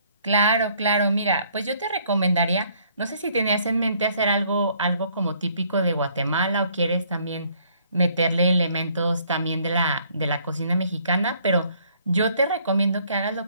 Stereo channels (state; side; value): inverted; both; correlation -0.64